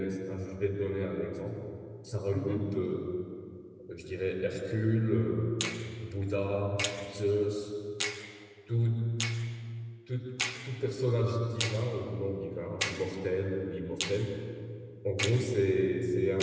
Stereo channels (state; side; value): identical; both; correlation 1.00